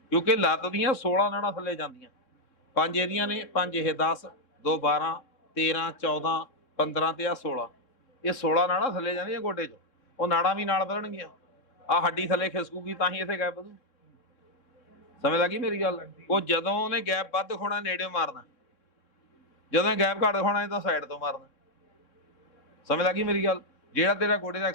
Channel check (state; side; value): late; right; 3.6 ms